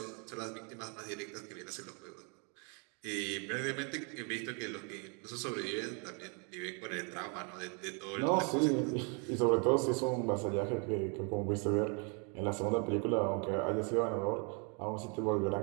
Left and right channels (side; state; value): left; quieter; 36.4 dB